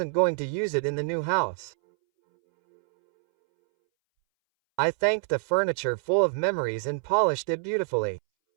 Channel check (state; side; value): silent; left; 61 dB below the other